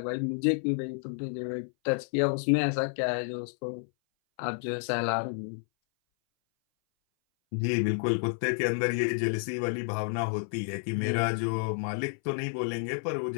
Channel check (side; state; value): right; silent; 58 dB below the other